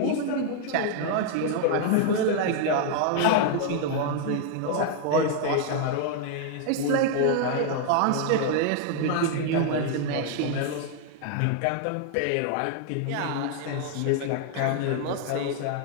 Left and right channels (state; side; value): different; both; correlation 0.00